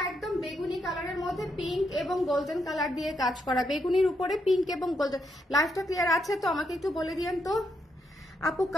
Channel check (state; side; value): normal; both; correlation 0.79